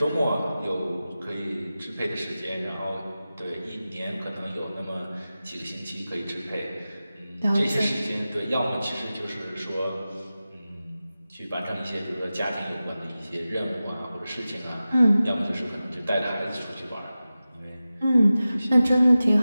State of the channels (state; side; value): inverted; both; correlation -0.95